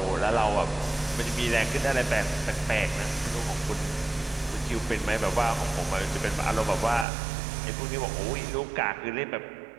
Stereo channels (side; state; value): left; drops out; at 7.1 s